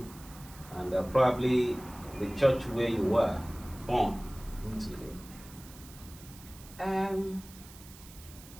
and probably the church where you were born into?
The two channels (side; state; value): right; noise; hiss, 19 dB below the sound